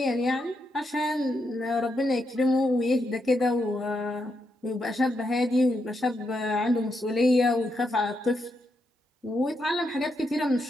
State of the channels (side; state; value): both; normal; correlation 0.82